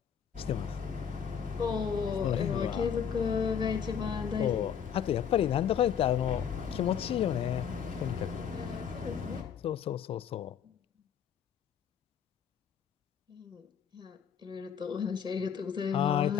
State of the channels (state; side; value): quieter; right; 7.9 dB